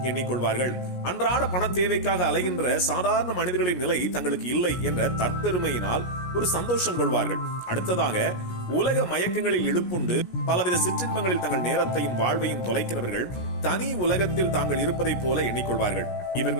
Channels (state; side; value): late; right; 17 ms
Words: எண்ணிக்கொள்வார்கள். அன்றாட பண தேவைக்காக அலைகின்ற சாதாரண மனிதர்களின் நிலை தங்களுக்கு இல்லை என்ற தற்பெருமையினால் ஒரு சந்தோஷம் கொள்வார்கள். அடுத்ததாக, உலக மயக்கங்களில் இழுப்புண்டு பலவித சிற்றின்பங்களில் தங்கள் நேரத்தையும் வாழ்வையும் தொலைக்கிறவர்கள் தனி உலகத்தில் தாங்கள் இருப்பதை போல எண்ணிக்கொள்வார்கள்.